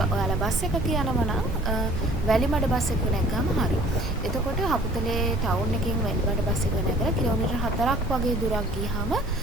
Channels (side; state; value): both; normal; correlation 0.51